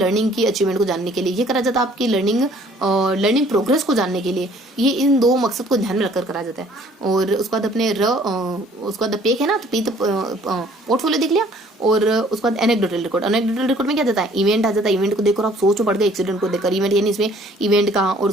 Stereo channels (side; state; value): both; normal; correlation 0.57